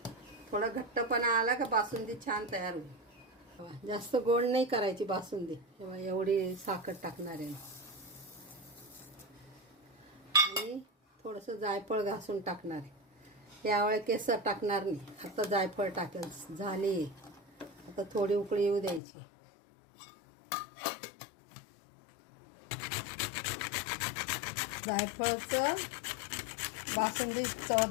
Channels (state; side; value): drops out; right; at 19.0 s